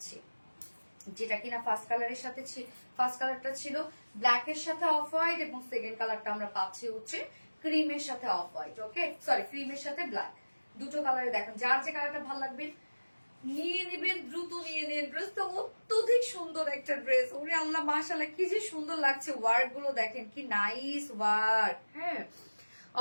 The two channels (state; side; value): inverted; both; correlation -1.00